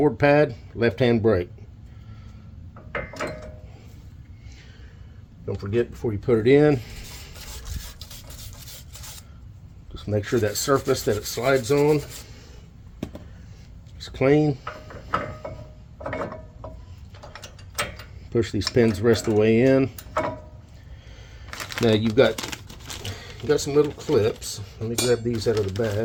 pad, left hand brake. Don't forget before you put it in, just make sure that surface that it slides on is clean. Push these pins the rest of the way in. Now you've got some little clips. Let me grab these out of the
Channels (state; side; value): identical; both; correlation 1.00